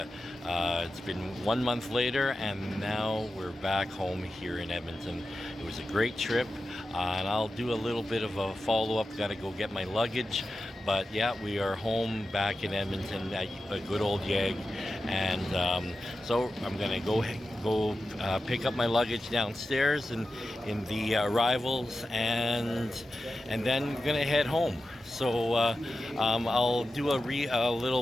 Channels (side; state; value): both; normal; correlation 0.92